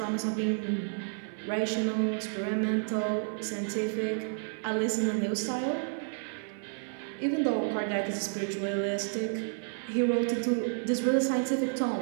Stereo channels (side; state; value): left; silent; 56 dB below the other